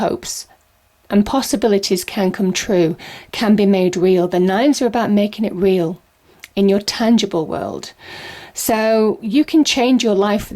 and possibilities can come true, can be made real. The nines are about making it real in your tangible world. So you can change your life for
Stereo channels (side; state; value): both; identical; correlation 1.00